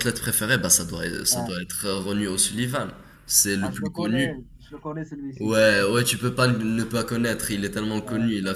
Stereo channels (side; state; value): both; identical; correlation 1.00